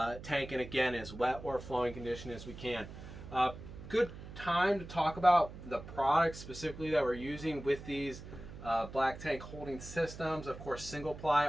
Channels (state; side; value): noise; right; hum, 13 dB below the sound